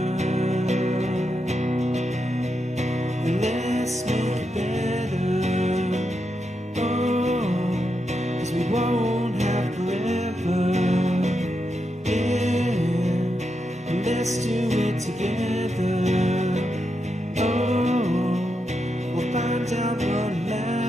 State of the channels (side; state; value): both; normal; correlation 0.85